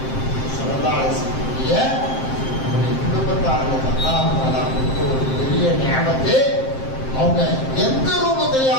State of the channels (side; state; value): right; late; 7.6 ms